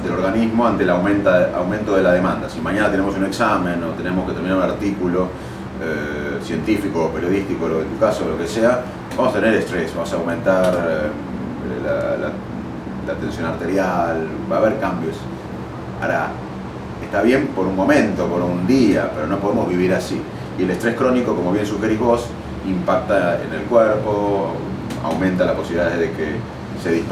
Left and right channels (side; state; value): both; identical; correlation 1.00